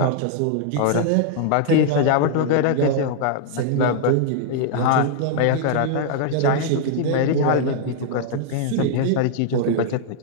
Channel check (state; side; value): different; both; correlation -0.01